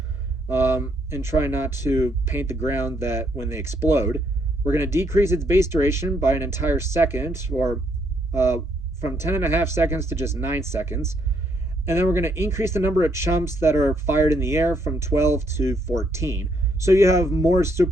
and try not to paint the ground that when they explode. We're going to decrease its base duration by an entire second, or from 10.5 seconds to just 9 seconds. And then we're going to increase the number of chumps that are fired in the air from 12 to 14. So you have more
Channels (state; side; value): normal; both; correlation 0.72